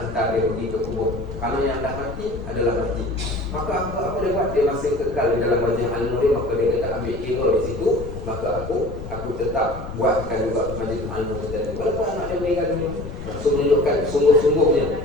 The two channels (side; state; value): left; noise; rumble, 11 dB below the sound